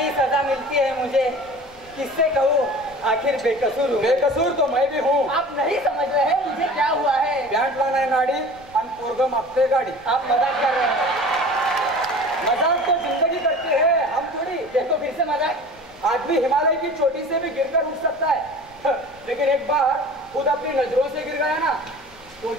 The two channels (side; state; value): left; noise; rumble, 26 dB below the sound